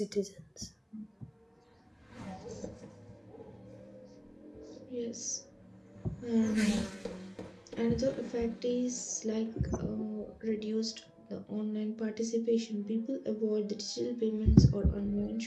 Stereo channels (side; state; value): both; identical; correlation 1.00